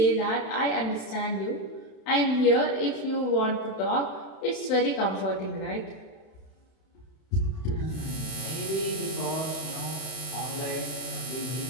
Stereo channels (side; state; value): right; late; 31 ms